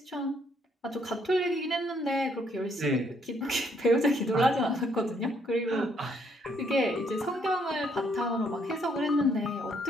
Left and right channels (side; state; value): both; normal; correlation 0.70